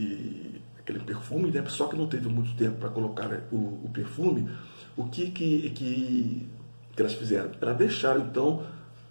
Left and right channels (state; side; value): inverted; both; correlation -1.00